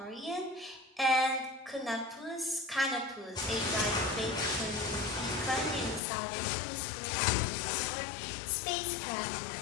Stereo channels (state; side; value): drops out; right; at 6.0 s